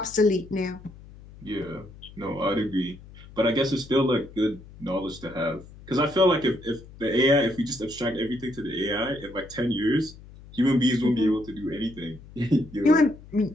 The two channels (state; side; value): noise; left; hum, 19 dB below the sound